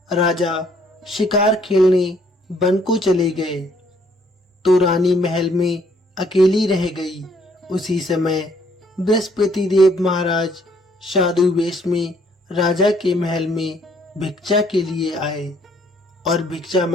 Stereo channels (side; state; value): both; normal; correlation 0.65